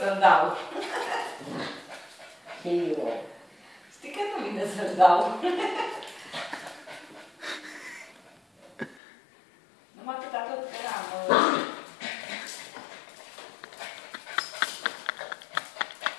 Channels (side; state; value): right; drops out; at 9.0 s